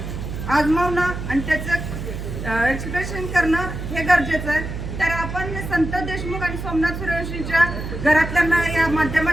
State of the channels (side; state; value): right; noise; hum, 6 dB below the sound